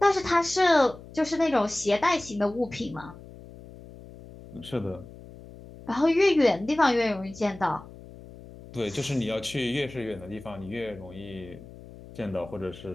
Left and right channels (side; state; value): left; noise; hum, 18 dB below the sound